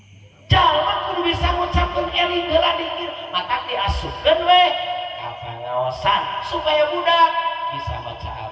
jalma kudu bisa ngucapkeun eling heula zikir mata diasupkeun we ka pangaosan supaya budak bisa baca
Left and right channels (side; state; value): both; identical; correlation 1.00